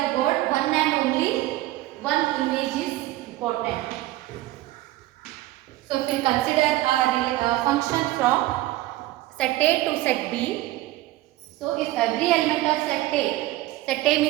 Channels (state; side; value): quieter; left; 16.7 dB